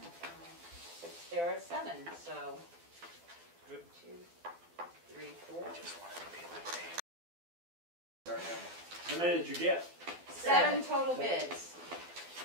There are 7, so. Good. 2, 3, 4. How many did you get? 7 total bids.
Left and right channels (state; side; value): late; left; 12 ms